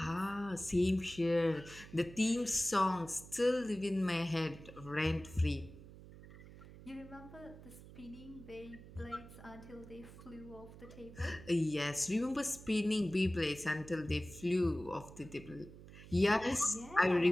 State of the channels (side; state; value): right; noise; hum, 17 dB below the sound